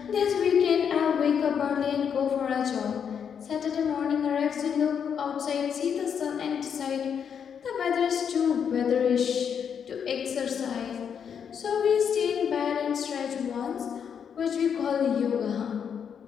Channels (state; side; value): quieter; right; 7.5 dB